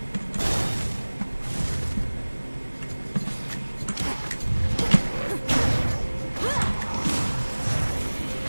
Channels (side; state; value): both; inverted; correlation -1.00